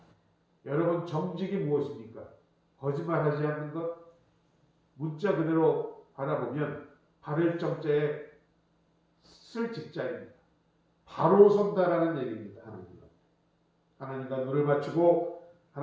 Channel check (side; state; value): both; identical; correlation 1.00